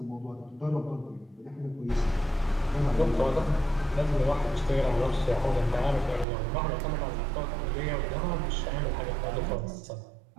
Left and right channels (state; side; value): drops out; left; at 6.2 s